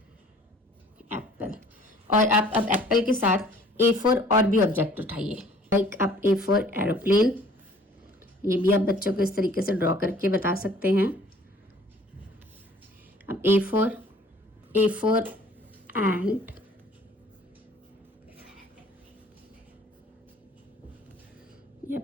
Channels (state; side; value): normal; both; correlation 0.54